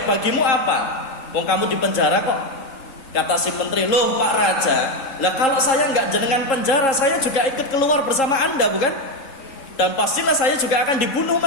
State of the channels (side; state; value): right; late; 3.7 ms